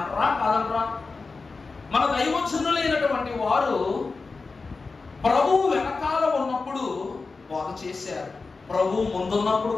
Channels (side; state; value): right; quieter; 4.1 dB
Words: కాదంటారా? మన దైవజనులైనటువంటి వారు ప్రభువు వెనకాల ఉన్నప్పుడు బోధ చేశారు, ప్రభువు ముందున్నప్పుడు